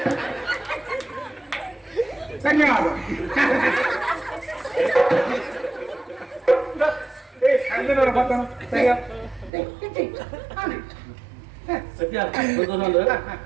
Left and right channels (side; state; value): left; drops out; at 9.5 s